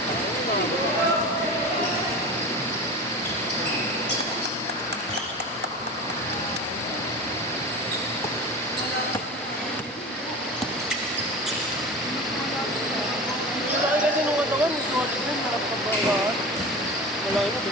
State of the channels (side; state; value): both; normal; correlation 0.31